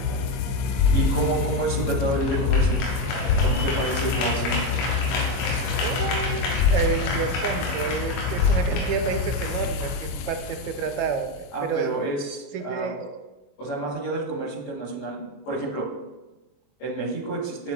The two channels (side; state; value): right; late; 22 ms